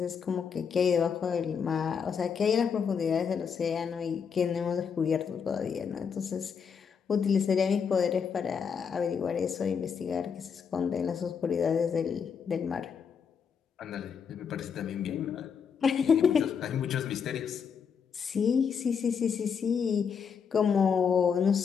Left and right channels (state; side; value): quieter; right; 6.6 dB